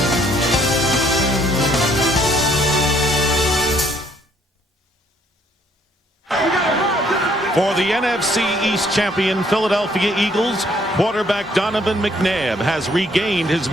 For the NFC East champion Philadelphia Eagles, quarterback Donovan McNabb has regained his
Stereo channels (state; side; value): normal; both; correlation 0.65